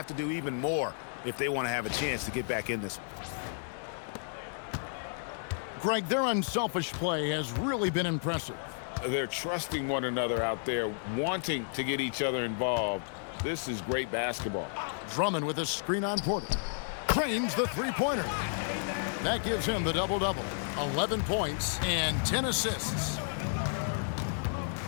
to do even more if they want to have a chance to get back in this one. Greg, their unselfish play has really been impressive. They're trusting one another out there, wanting to get each other involved. This is great basketball. Drummond with a screen on Porter. Trains the three-pointer. That gives him the double-double. 11 points and 10 assists.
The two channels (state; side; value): silent; right; digital silence